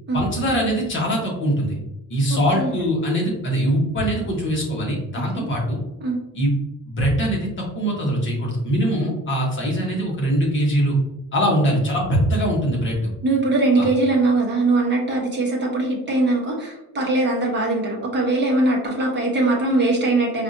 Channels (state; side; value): normal; both; correlation 0.46